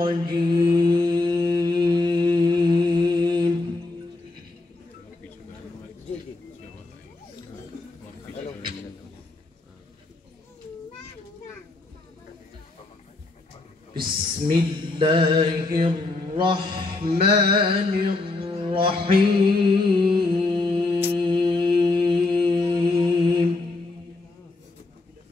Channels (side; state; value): right; quieter; 3.2 dB